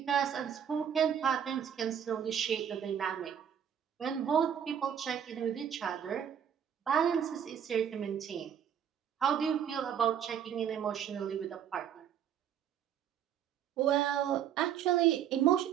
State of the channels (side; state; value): left; quieter; 8.9 dB